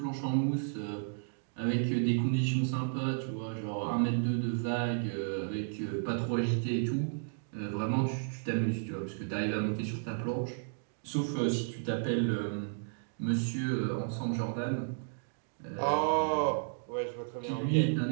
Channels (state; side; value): silent; left; digital silence